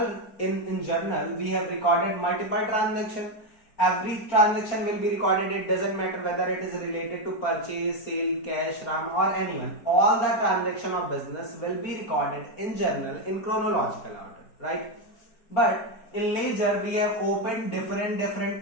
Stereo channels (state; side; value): late; right; 4.3 ms